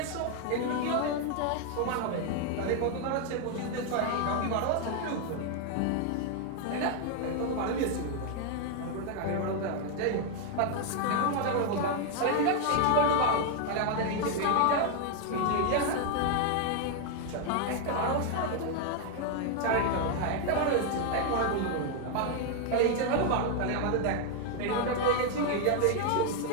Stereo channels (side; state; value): both; different; correlation 0.00